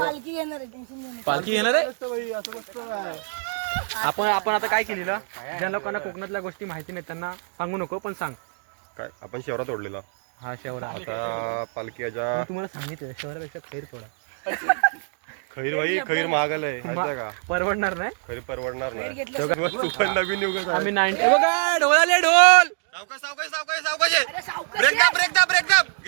घेणार आहे. टेन्शन घेणार. पालखी घेणार आहे. भाई असं नसतं काय. आपण आता काय केलेलं, ज्या लोकांना कोकणातल्या गोष्टी माहिती नाही त्यांना सांगू नको, पण सांग. काय आपण शेवरा तोडलेला. हा शेवरा. आता पालखीच्या मी तुम्हाला सांगितलं शेवरापेक्षा खैर थोडा खैर भाई खैर महागाल आहे माहिती का. परवडणार नाही. खैर परवडणार नाही. तेव्हा तू पण नवीन युग आम्ही 90 बघा ढोल आले ढोल.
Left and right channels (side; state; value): left; silent; 59 dB below the other